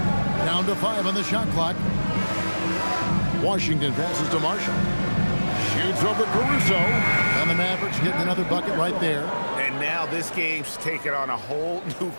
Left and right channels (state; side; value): inverted; both; correlation -1.00